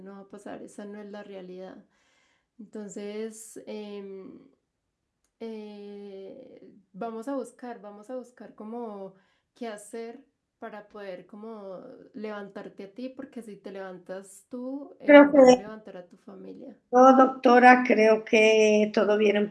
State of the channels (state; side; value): identical; both; correlation 1.00